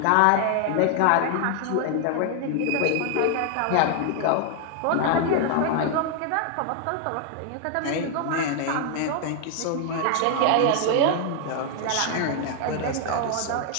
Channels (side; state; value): both; different; correlation 0.00